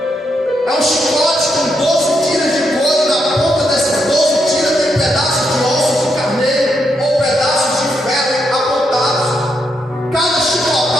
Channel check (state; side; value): normal; both; correlation 0.80